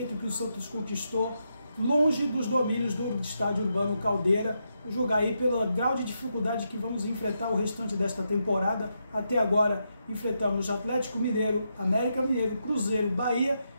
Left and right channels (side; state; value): both; inverted; correlation -0.83